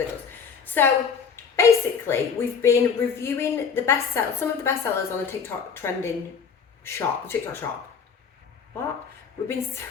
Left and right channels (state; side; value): quieter; right; 6.3 dB